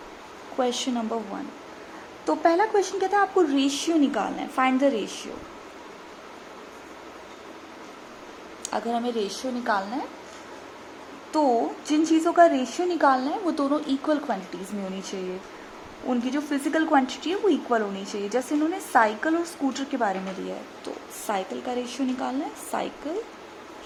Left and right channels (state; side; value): identical; both; correlation 1.00